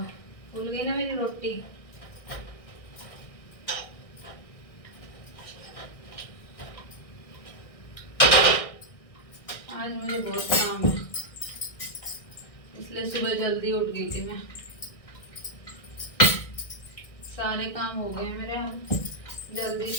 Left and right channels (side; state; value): right; late; 1.6 ms